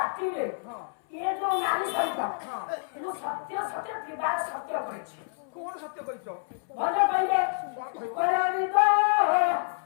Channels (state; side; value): silent; right; 59 dB below the other